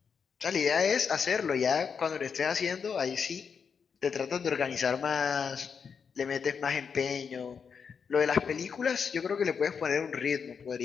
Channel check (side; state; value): right; quieter; 6.3 dB